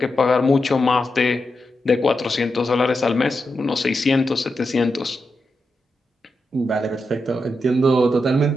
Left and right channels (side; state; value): both; normal; correlation 0.87